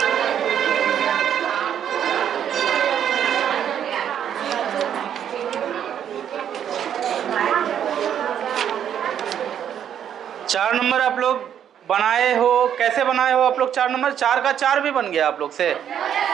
चार नंबर आप लोग बनाए हो? कैसे बनाए हो आप लोग 4 नंबर? 4 का 4 भी बन गया आप लोग से?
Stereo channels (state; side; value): quieter; left; 9.3 dB